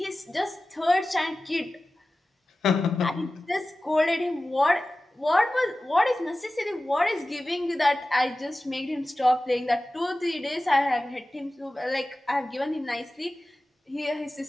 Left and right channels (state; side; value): normal; both; correlation 0.96